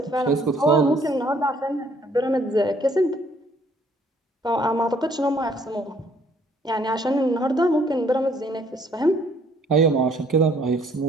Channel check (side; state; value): both; normal; correlation 0.63